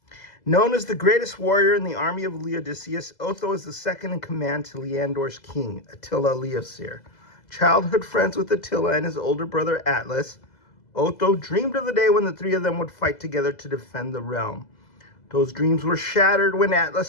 Known as the greatest warrior in the army of Legacies, Otho is the second in command to Leandor's king, Attila Leoseer. Childhood friends with Attila and his older brother Atlas, Otho dreamed of the day when the three of them would fight together to defend the realm. Those dreams were shattered when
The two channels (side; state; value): right; late; 2.0 ms